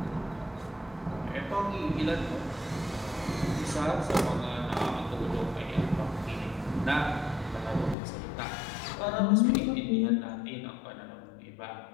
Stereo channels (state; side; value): drops out; right; at 8.0 s